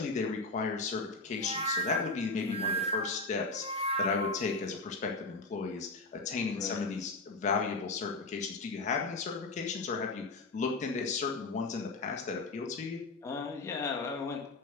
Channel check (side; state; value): right; quieter; 3.3 dB